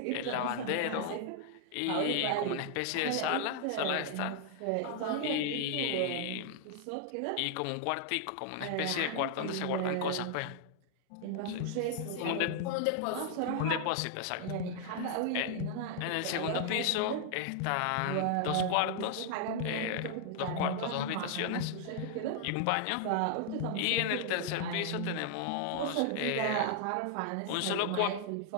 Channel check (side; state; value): both; different; correlation 0.00